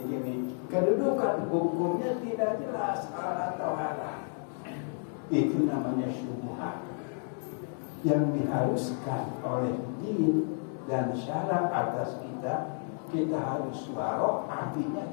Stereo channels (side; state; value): right; silent; 57 dB below the other